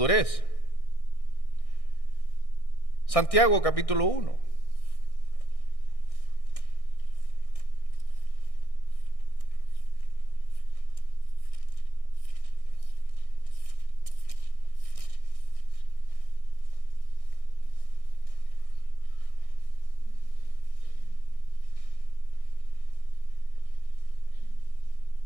Santiago capítulo 1.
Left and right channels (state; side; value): late; right; 1.6 ms